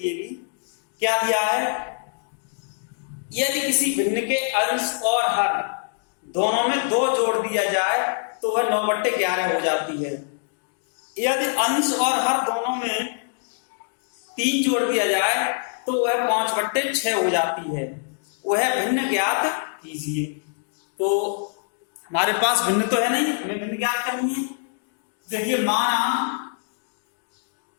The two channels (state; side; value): silent; right; digital silence